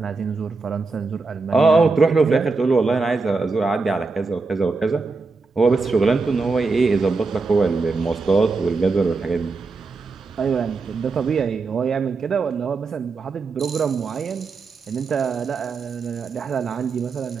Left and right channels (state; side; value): quieter; left; 4.1 dB